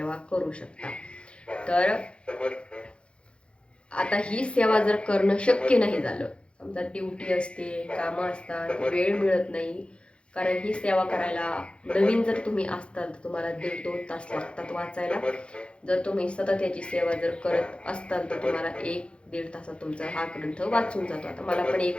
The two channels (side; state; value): right; late; 0.057 ms